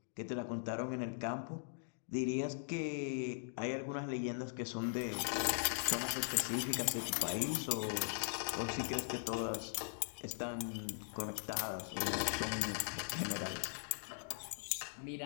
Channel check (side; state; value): right; silent; digital silence